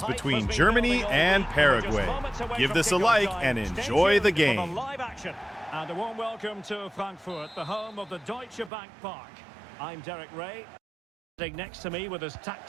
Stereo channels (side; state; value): left; drops out; at 8.7 s